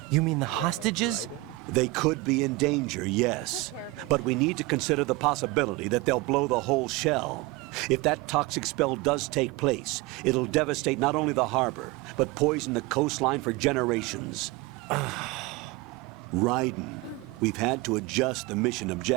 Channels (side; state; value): left; quieter; 21.3 dB